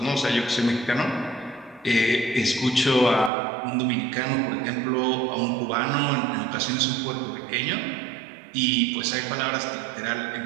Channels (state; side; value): drops out; left; at 3.3 s